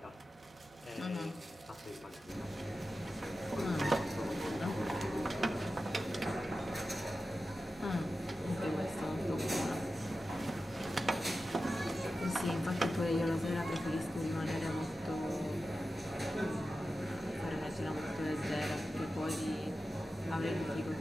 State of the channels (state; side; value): normal; both; correlation 0.93